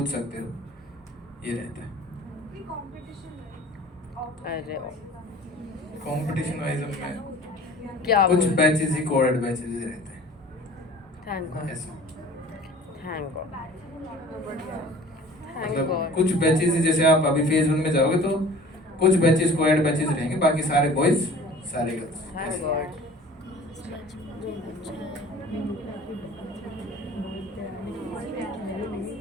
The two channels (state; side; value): normal; both; correlation 0.46